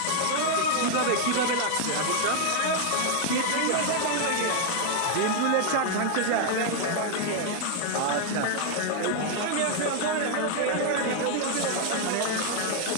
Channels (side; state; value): both; different; correlation 0.00